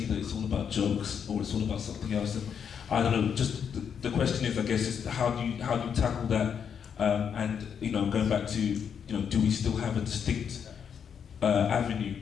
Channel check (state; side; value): quieter; right; 7.5 dB